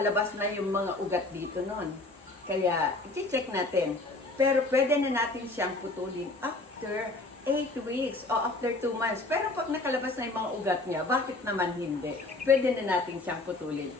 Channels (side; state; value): right; quieter; 3.0 dB